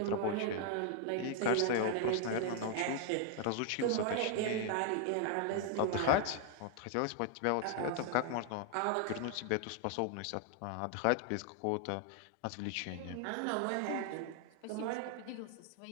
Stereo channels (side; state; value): both; different; correlation 0.00